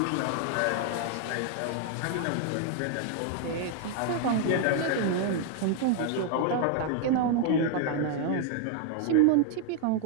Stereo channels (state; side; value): different; both; correlation 0.00